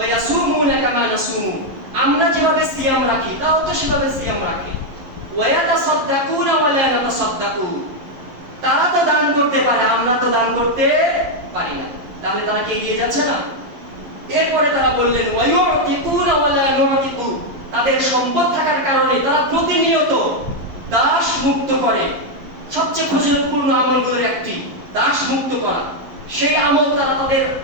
ইয়াসুমুনা কামা নাসুমু, আমরা যেভাবে সিয়াম রাখি, তারাও তো সেভাবে সিয়াম রাখে। ওয়া ইয়াতাসাদদাকুনা ওয়া লা নাতাসাদদাকু, তারা তো দান করতে পারে, আমরা তো দান করতে পারি না। তাহলে তারা কি এগিয়ে যাচ্ছে না? এরপরে তারা বললেন, ওয়া ইউতিকুনা ওয়া লা নুতিকু, তাদের সম্পদ থাকার কারণে তারা প্রতিনিয়ত দাস মুক্ত করে। সবচেয়ে ফজিলতপূর্ণ আমলগুলোর একটি দাস মুক্ত করা, সেই আমল তারা তাদের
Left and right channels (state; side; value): late; left; 11 ms